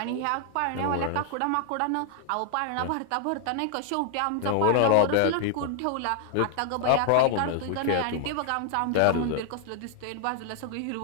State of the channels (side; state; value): both; different; correlation 0.00